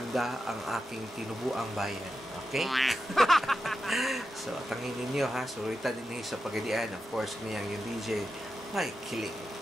ang aking tinubuang bayan. Okay? So, tangin ninyo, ha? Surita din sa Pagadian. Of course, niyang yung DJ, Mike Kiling.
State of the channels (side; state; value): both; normal; correlation 0.90